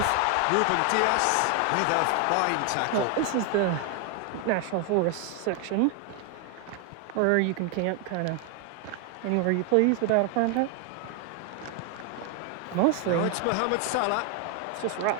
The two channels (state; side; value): different; both; correlation 0.01